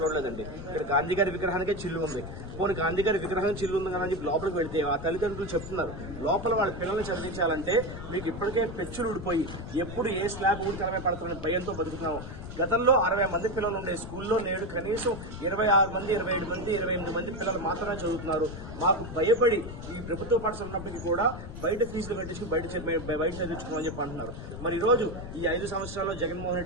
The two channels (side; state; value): left; noise; rumble, 10 dB below the sound